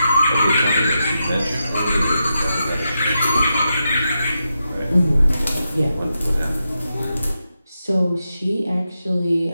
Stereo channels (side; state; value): both; inverted; correlation -0.87